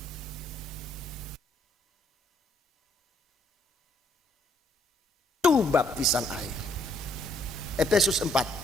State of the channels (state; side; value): normal; both; correlation 0.67